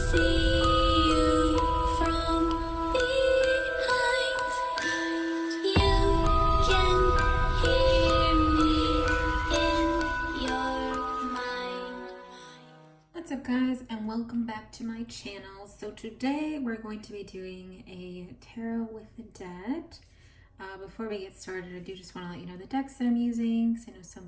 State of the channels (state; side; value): identical; both; correlation 1.00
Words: you from behind. You can hear me in your mind. What's up, guys, and welcome back to my channel. So today we're going to be doing a tarot with the dead. Before we get started, I do just want to let you know the decks that I'm using, because I know some